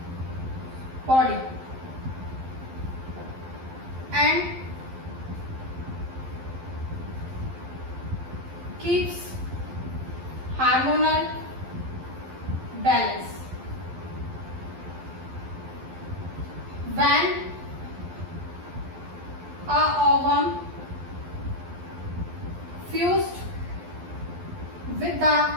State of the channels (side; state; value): left; late; 11 ms